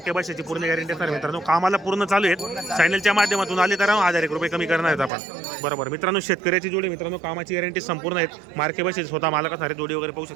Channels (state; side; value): drops out; left; at 5.1 s